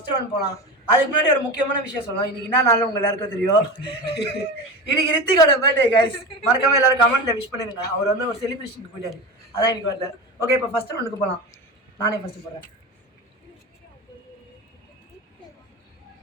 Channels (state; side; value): normal; both; correlation 0.26